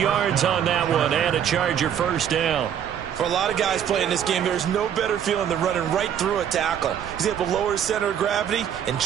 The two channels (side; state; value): left; quieter; 9.1 dB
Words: on that one and a Charger first down. For a lot of guys playing this game, there's no better feeling than running right through a tackle. He's able to lower his center of gravity and